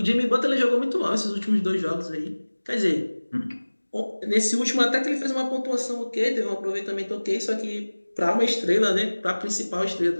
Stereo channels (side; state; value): both; inverted; correlation -1.00